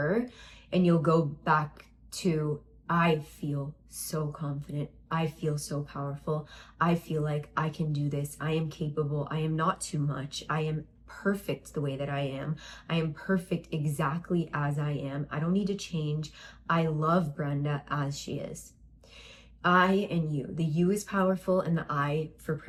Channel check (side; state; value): both; identical; correlation 1.00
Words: and you'll go back to, I feel so confident. I feel so powerful. I feel like I can do this. I am capable. I am not too much. I am perfect the way that I am. I am perfect exactly as I am. I don't need to change. I love Brenda as she is. I and you. The you is powerful, and the I for